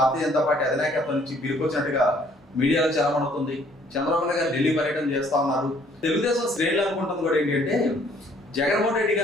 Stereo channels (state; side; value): normal; both; correlation 0.61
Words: జనతా పార్టీ అధినాయకత్వం నుంచి పిలుపుచ్చినట్టుగా మీడియాలో చలమవుతుంది. చంద్రబాబు నాయుడు గారు ఢిల్లీ పర్యటన చేస్తా ఉన్నారు. తెలుగుదేశం శ్రేణులు అనుకుంటుంది కూడా ఏంటంటే జగన్మోహన్ రెడ్డి